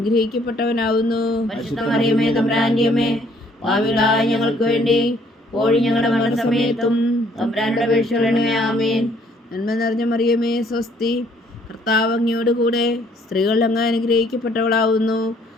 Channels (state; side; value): normal; both; correlation 0.63